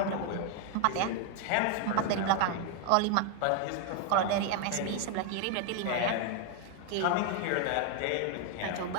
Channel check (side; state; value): both; different; correlation 0.01